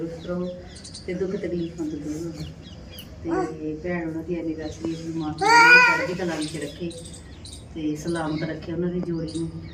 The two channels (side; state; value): both; identical; correlation 1.00